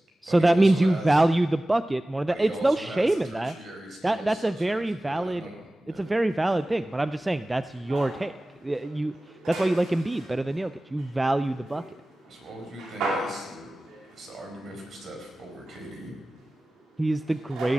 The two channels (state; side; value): normal; both; correlation 0.97